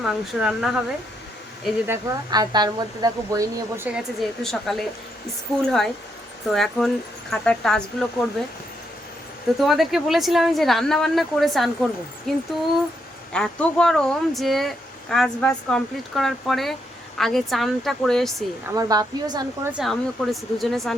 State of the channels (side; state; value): both; normal; correlation 0.78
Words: মাংস রান্না হবে। এই যে দেখো, আর তার মধ্যে দেখো বই নিয়ে বসে গেছে, যেহেতু সকালে স্কুল হয় তো এখন খাতার টাস্কগুলো করবে। তো তোমাদেরকে বলেছিলাম যে রান্না বান্না করে চান করব, কিন্তু এত গরম যে কাজ বাজ কমপ্লিট করার পরে আগে চানটা করে এসেছি। আমার বাপিও চান করেছে, আমিও করেছি, দুজনে চান